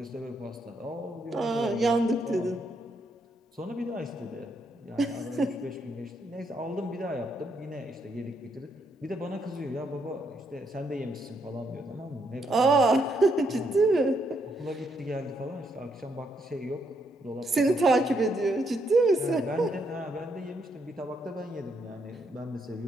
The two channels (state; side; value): normal; both; correlation 0.76